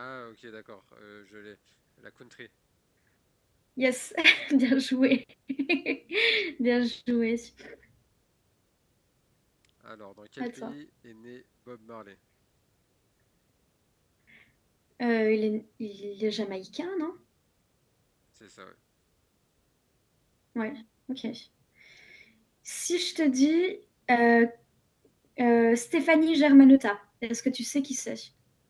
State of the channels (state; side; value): identical; both; correlation 1.00